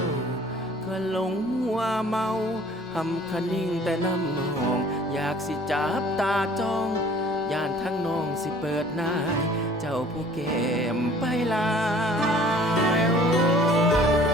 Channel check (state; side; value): normal; both; correlation 0.52